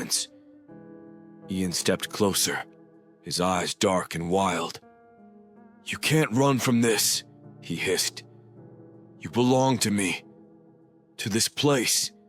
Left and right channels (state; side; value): identical; both; correlation 1.00